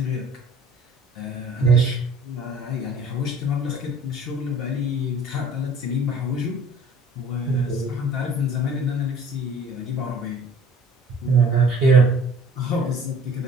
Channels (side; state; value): both; normal; correlation 0.51